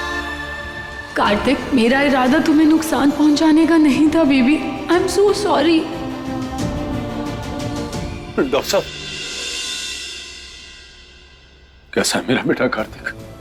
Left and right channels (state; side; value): identical; both; correlation 1.00